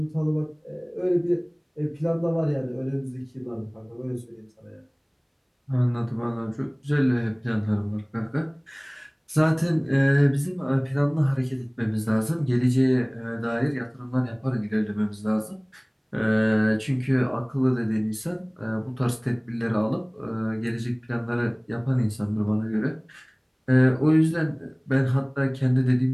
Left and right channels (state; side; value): identical; both; correlation 1.00